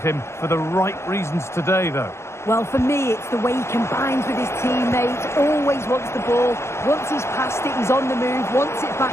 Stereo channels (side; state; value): right; late; 0.13 ms